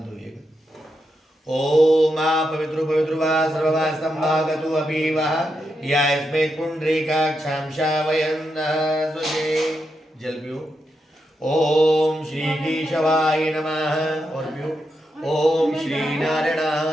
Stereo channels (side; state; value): both; normal; correlation 0.84